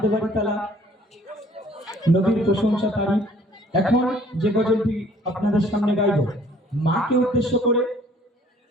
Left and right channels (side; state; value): both; normal; correlation 0.56